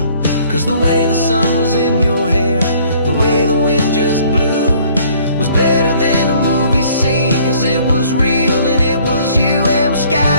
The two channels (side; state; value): both; inverted; correlation -0.58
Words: 'Cause the way the sun was in your hair, the way the wind just blew, was better than a movie scene, 'cause it was real and it was you. And we're